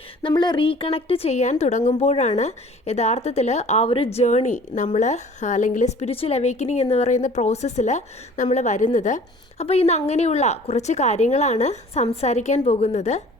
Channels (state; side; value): normal; both; correlation 0.49